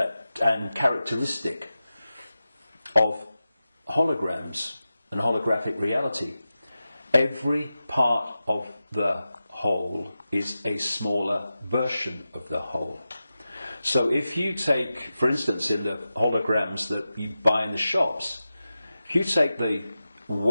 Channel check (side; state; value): both; inverted; correlation -0.93